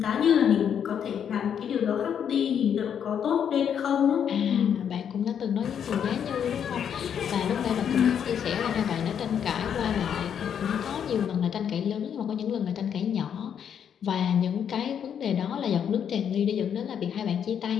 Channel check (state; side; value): quieter; right; 8.3 dB